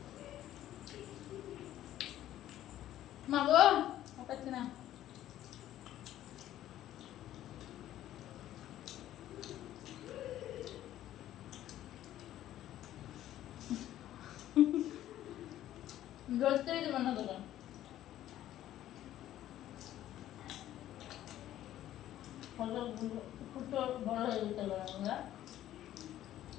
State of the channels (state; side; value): quieter; right; 12.9 dB